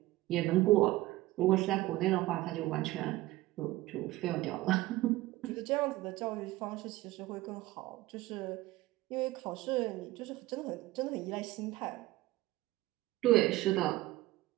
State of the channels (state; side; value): quieter; left; 17.8 dB